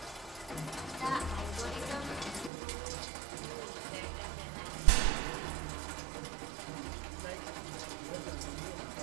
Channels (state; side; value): drops out; left; at 2.5 s